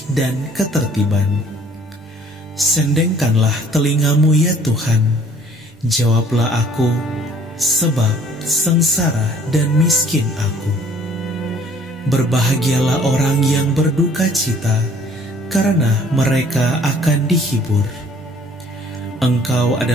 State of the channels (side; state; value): both; normal; correlation 0.56